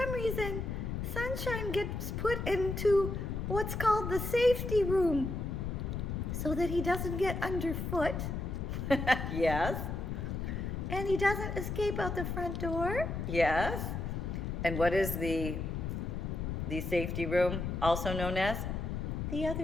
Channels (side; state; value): left; noise; rumble, 3 dB below the sound